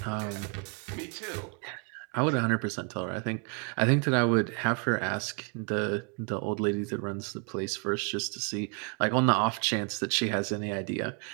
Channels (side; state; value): left; quieter; 38.2 dB